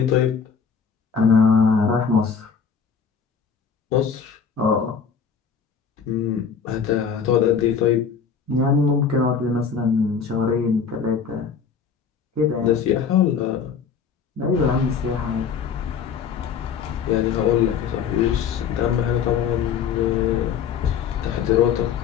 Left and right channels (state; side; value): quieter; right; 6.5 dB